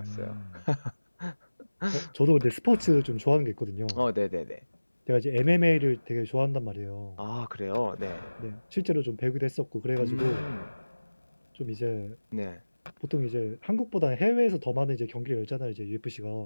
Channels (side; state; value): both; inverted; correlation -1.00